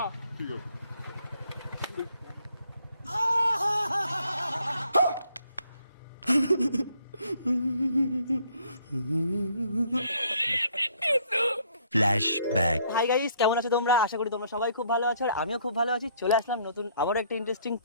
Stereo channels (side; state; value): both; inverted; correlation -0.65